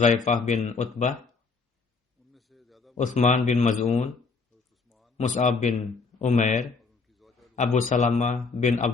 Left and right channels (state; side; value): quieter; right; 4.5 dB